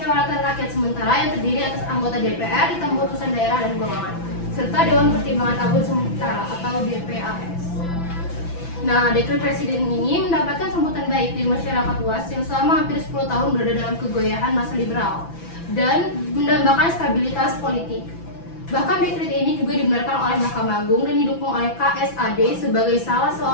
Rakyat sementara yang terdiri atas anggota DPR, ditambah utusan daerah dan golongan, serta Dewan Pertimbangan Agung Sementara atau DPAS. Nah, dekret Presiden ini mendapatkan sambutan baik dari masyarakat luas yang selama hampir 10 tahun berada dalam kegoyahan masa liberal dan mendambakan stabilitas politik. Bahkan dekret ini juga dibenarkan oleh Mahkamah Agung dan didukung oleh KSAD sebagai salah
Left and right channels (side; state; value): right; late; 6.0 ms